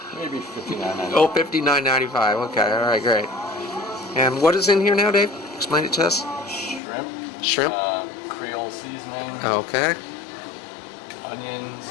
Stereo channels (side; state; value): right; drops out; at 6.8 s